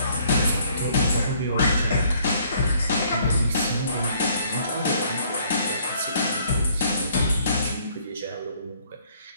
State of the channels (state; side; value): inverted; both; correlation -0.63